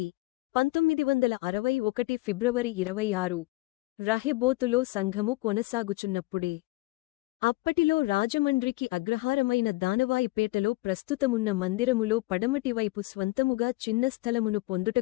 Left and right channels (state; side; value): quieter; right; 22.1 dB